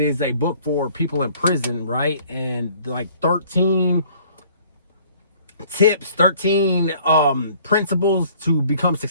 is a book for people in prison, right? And like 13 tips, 13 principles to become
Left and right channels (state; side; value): inverted; both; correlation -0.56